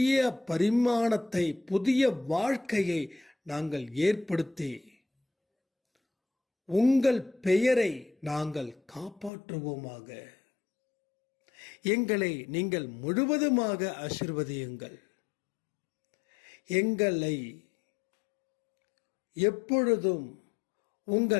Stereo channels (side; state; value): right; drops out; at 9.3 s